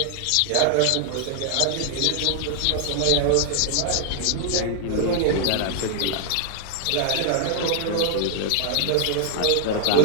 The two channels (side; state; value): both; different; correlation 0.00